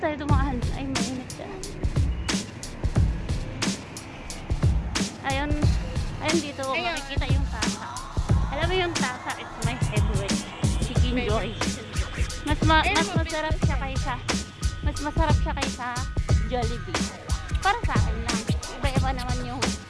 dumaan. Ay, mainit siya. Ayun, ayun dito Ayun. makikita yung tasa. Alam mo yung tasa, it's my favorite. Chicken Joy. Mas masarap siya kaysa Jollibee. Para sa akin lang. Iba-iba naman yung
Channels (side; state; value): both; identical; correlation 1.00